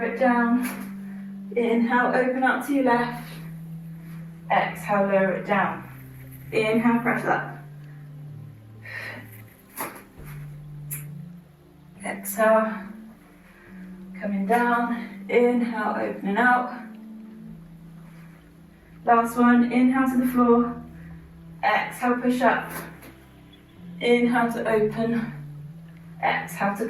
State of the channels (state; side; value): identical; both; correlation 1.00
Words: it down, inhale, open out to your left, exhale, lower it down, inhale, press up, exhale, coming down, inhale, opening out. Last one, inhale to the floor, exhale, push up, inhale to open, exhale to